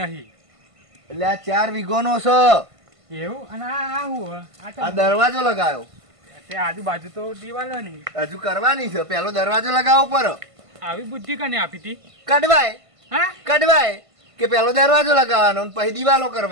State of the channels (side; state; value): left; late; 1.5 ms